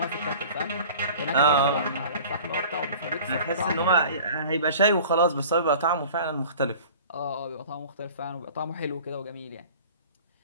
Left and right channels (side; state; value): both; inverted; correlation -0.43